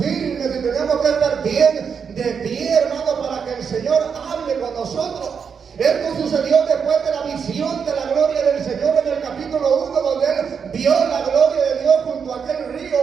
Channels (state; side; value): quieter; left; 6.5 dB